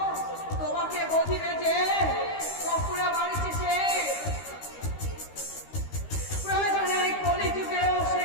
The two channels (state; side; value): late; right; 13 ms